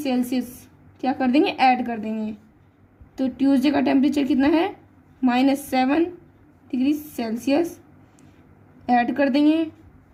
क्या कर देंगे, ऐड कर देंगे। तो ट्यूसडे का टेम्परेचर कितना है, -7 डिग्री सेल्सियस, ऐड कर देंगे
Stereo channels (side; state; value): both; identical; correlation 1.00